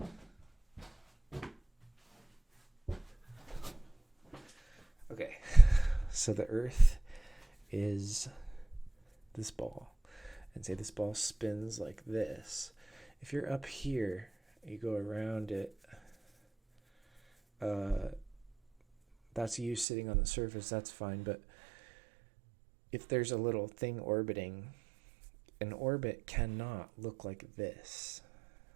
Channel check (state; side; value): drops out; left; at 19.9 s